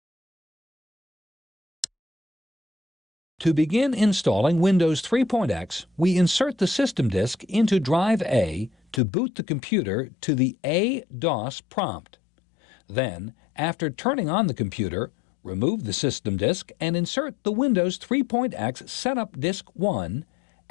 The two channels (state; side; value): drops out; right; at 9.0 s